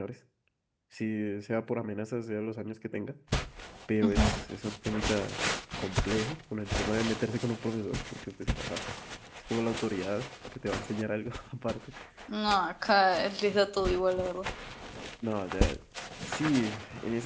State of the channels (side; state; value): both; identical; correlation 1.00